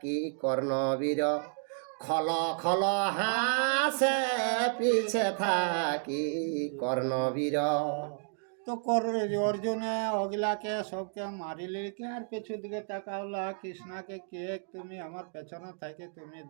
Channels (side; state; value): left; silent; 57 dB below the other